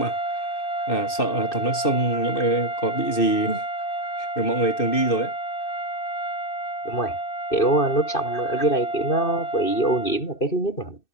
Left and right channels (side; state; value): right; late; 2.6 ms